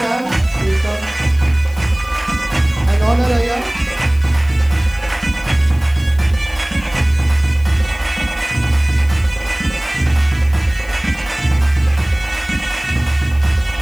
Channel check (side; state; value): left; noise; hiss, 24 dB below the sound